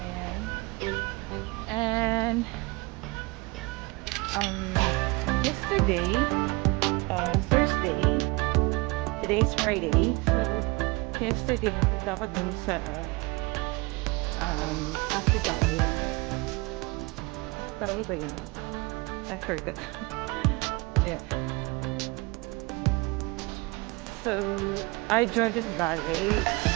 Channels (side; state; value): left; quieter; 25.8 dB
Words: Ayan. And um, yesterday, Thursday, today is Friday. So yesterday, punta ako dun sa Abu Dhabi. Tawag ba yun? I forgot. Yeah. So I Jordan Valley.